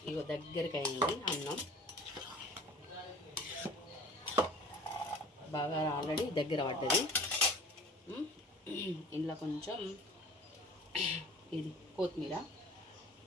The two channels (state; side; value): normal; both; correlation 0.44